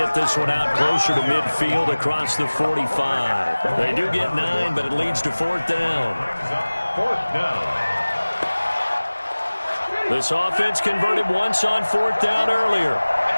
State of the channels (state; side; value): inverted; both; correlation -1.00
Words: this one out closer to midfield across the 45. They do get 9, but it leads to 4th down. 4th down. This offense converted once on 4th down earlier.